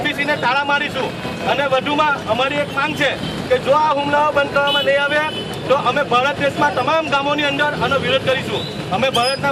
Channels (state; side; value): identical; both; correlation 1.00